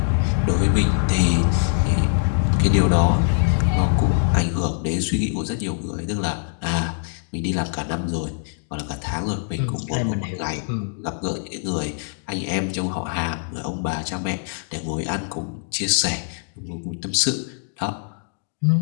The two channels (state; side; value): silent; right; digital silence